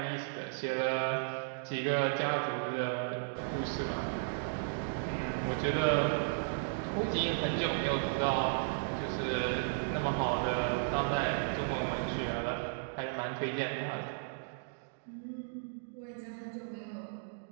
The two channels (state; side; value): silent; left; digital silence